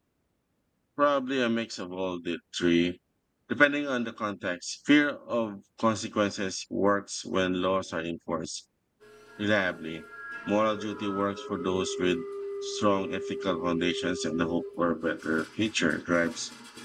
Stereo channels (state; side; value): identical; both; correlation 1.00